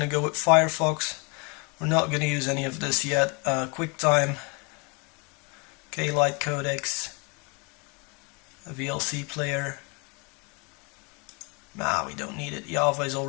to go with Firefox. We're not going to use any of this yet. QuickTime, K-Lite codecs, a VLC player. Nah, we don't need it. Java is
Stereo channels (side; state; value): right; quieter; 32.5 dB